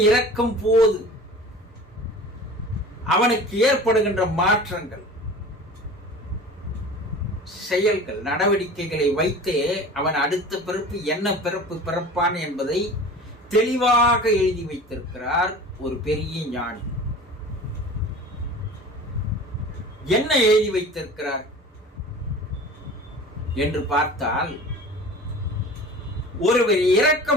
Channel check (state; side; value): normal; both; correlation 0.39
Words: இறக்கும் போது அவனுக்கு ஏற்படுகின்ற மாற்றங்கள், செயல்கள், நடவடிக்கைகளை வைத்தே அவன் அடுத்த பிறப்பு என்ன பிறப்பு பிறப்பான் என்பதை தெளிவாக எழுதி வைத்திருக்கிறார் ஒரு பெரிய ஞானி. என்ன எழுதி வைத்திருக்கிறார் என்று பார்த்தால், ஒருவர்